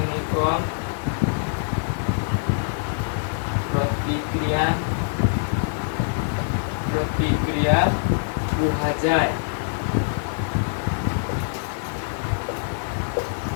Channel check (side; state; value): right; silent; 60 dB below the other